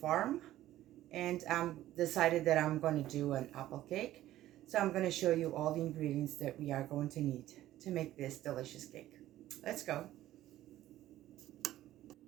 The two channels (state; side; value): quieter; left; 14.1 dB